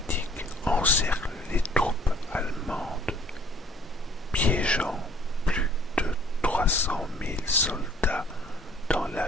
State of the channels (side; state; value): both; normal; correlation 0.57